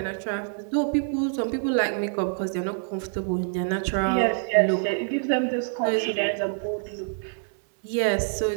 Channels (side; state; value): left; silent; 61 dB below the other